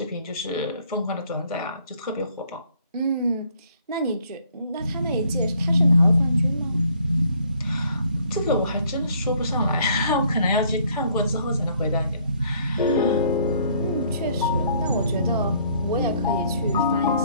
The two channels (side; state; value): both; inverted; correlation -0.62